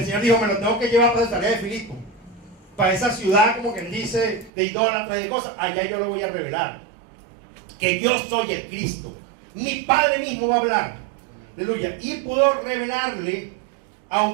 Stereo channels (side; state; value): left; drops out; at 4.5 s